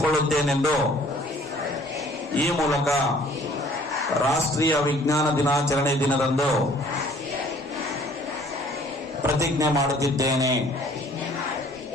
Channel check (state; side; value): normal; both; correlation 0.56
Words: ಈ ಮೂಲಕ ರಾಷ್ಟ್ರೀಯ ವಿಜ್ಞಾನ ದಿನಾಚರಣೆ ದಿನದಂದು ಪ್ರತಿಜ್ಞೆ ಮಾಡುತ್ತಿದ್ದೇನೆ.